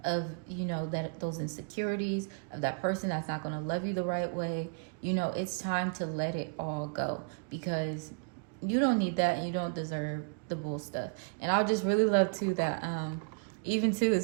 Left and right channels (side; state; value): left; quieter; 38.9 dB